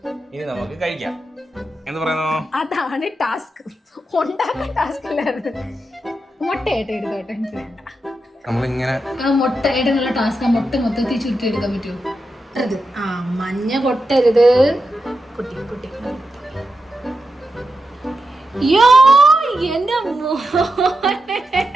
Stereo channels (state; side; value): normal; both; correlation 0.88